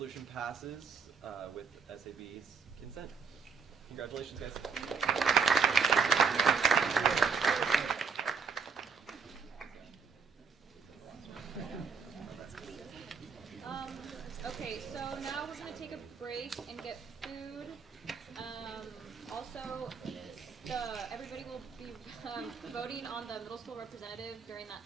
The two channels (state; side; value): quieter; left; 5.6 dB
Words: passes with SAB's consent. Congratulations, guys. Okay, so now we're going to take a break and get food. Also, everybody will be voting on the middle school representative during that